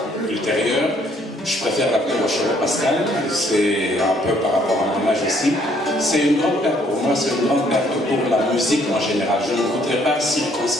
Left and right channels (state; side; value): normal; both; correlation 0.65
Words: ultérieure. Je préfère l'appeler Rochereau Pascal, c'est un peu par rapport à mon âge aussi. C'est une grande perte pour moi, c'est une grande perte pour la musique en général. Je ne voudrais pas